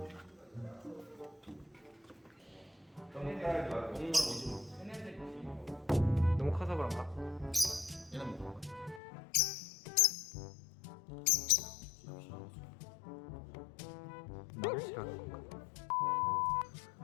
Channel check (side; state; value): right; drops out; at 9.0 s